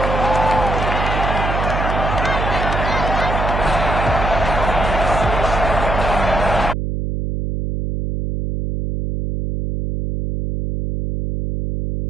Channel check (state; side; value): noise; right; hum, 2 dB below the sound